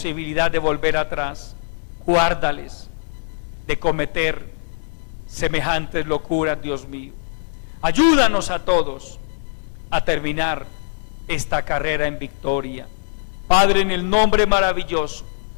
de volver atrás. Guárdales de cometer semejantes locuras, Dios mío. Ayúdanos a todos a terminar esta carrera en victoria. Padre, en el nombre maravilloso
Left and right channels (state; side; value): silent; right; digital silence